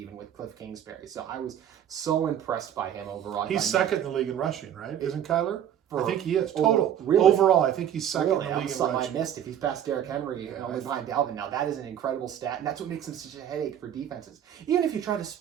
with Cliff Kingsbury. So I was so impressed by him overall. He's second in the league in rushing, right? Isn't Kyler? I think he is. Really? Overall, I think he's second in the league in something rushing. I missed. If he's past Derrick Henry and only behind Dalvin now, that is an incredible stat, and that's what makes him such a headache for defenses. Even if you try to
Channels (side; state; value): left; quieter; 10.0 dB